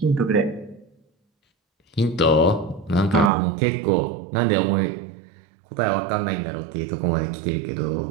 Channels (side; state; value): left; drops out; at 3.3 s